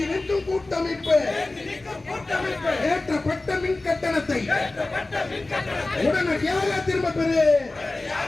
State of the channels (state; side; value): quieter; right; 3.1 dB